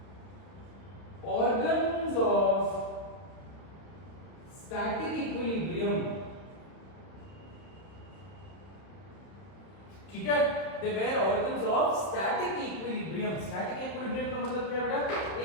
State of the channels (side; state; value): right; late; 31 ms